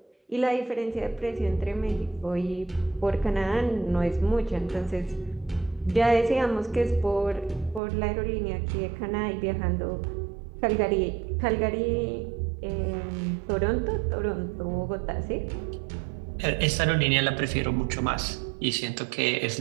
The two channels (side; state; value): left; drops out; at 7.8 s